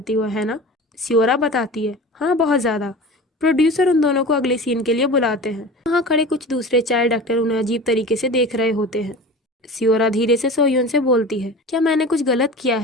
हो, है ना? सियोरा बताती है, हाँ बहुत ज़्यादा। प्रोड्यूसर उन दोनों को अगले सीन के लिए बुलाते हैं। वहाँ खड़े कुछ दूसरे चाइल्ड एक्टर उन्हें अजीब तरीके से देख रहे होते हैं। सियोरा धीरे से सोह्यून से बोलती है, क्या मैंने कुछ गलत किया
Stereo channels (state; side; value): normal; both; correlation 0.35